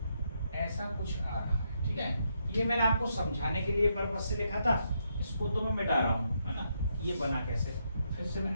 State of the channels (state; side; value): inverted; both; correlation -0.78